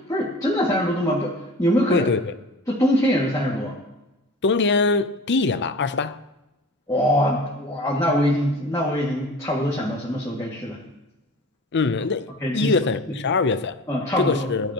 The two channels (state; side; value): normal; both; correlation 0.38